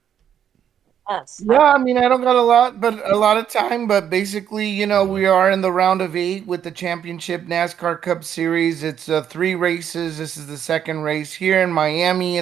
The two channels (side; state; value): left; quieter; 9.2 dB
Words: Yes. Yeah, I mean, I don't got a lot of time, but basically, we are in the round of 8 with the championship NASCAR Cup Series. It's 3 races. This is the second race here in Miami